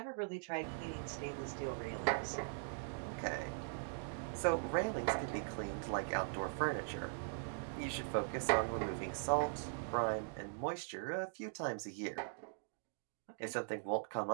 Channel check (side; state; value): left; silent; digital silence